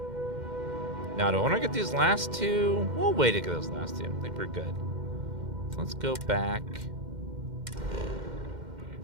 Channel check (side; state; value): left; late; 2.1 ms